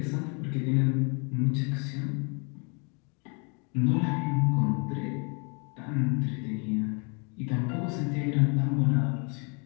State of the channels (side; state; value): right; quieter; 34.9 dB